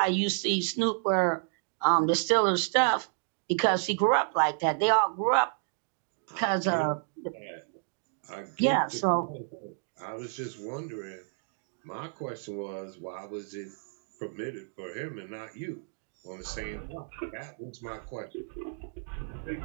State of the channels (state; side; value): silent; left; digital silence